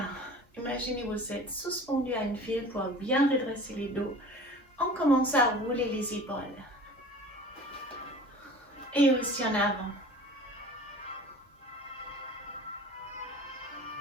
imaginez vous êtes suspendu à une file pour bien redresser les dos. On commence à rouler les épaules. Et aussi en avant.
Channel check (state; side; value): normal; both; correlation 0.42